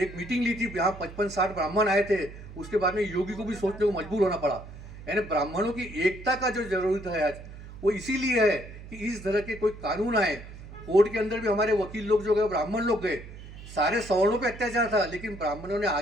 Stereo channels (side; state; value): right; noise; hum, 15 dB below the sound